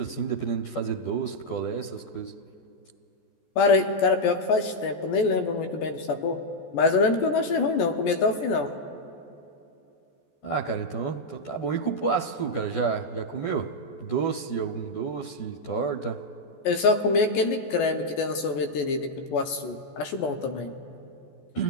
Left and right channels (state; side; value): late; right; 14 ms